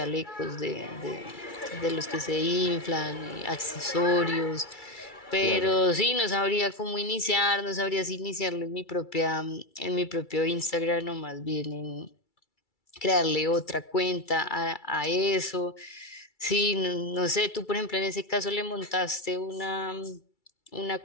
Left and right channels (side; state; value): right; late; 2.3 ms